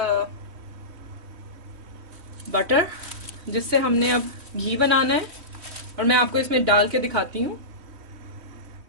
butter, जिससे हमने अब घी बनाना है। और मैं आपको इसमें डाल के दिखाती हूँ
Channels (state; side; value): late; left; 3.1 ms